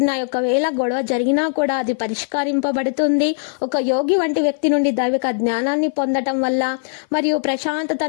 ఒకవేళ గొడవ జరిగినా కూడా అది పరిష్కరింపబడుతుంది. ఒక యోగి వంటి వ్యక్తి నుండి దైవిక జ్ఞానాన్ని పొందటం వల్ల మరియు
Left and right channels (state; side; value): silent; right; 57 dB below the other